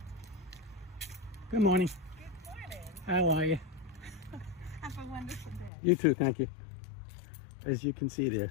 Good morning. Good morning. How are you? Have a wonderful day. You too, thank you. As you can see, they're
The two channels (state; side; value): drops out; right; at 5.7 s